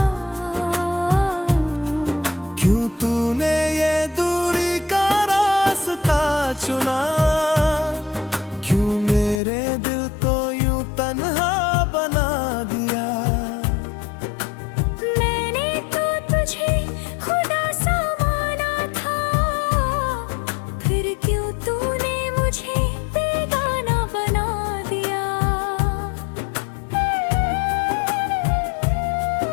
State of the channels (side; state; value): right; drops out; at 9.4 s